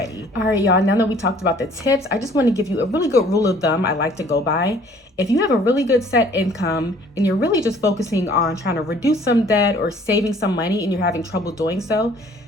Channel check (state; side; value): normal; both; correlation 0.56